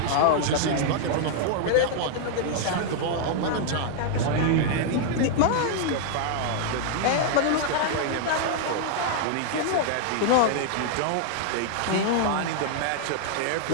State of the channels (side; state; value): both; different; correlation -0.01